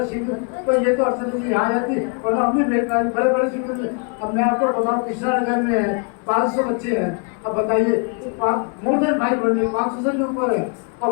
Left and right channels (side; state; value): right; quieter; 37.3 dB